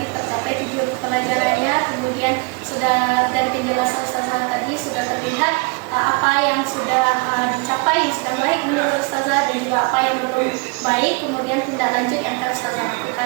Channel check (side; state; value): left; quieter; 30.2 dB